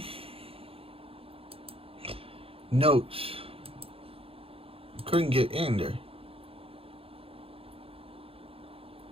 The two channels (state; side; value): late; left; 0.27 ms